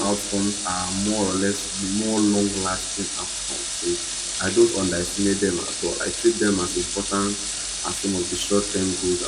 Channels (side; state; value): both; identical; correlation 1.00